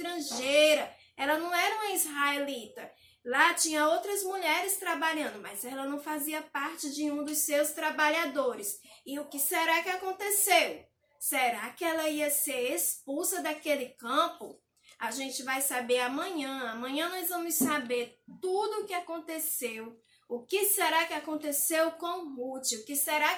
Ela não era uma israelita. Lá tinha outras mulheres trabalhando, mas ela não fazia parte de um dos seus trabalhadores. E o que será que aconteceu? Será que ela ia ser expulsa daquele campo? A gente vai saber amanhã. Amanhã nós vamos saber tudo o que aconteceu. O que será que aconteceu com Ruth? O que será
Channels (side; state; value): both; identical; correlation 1.00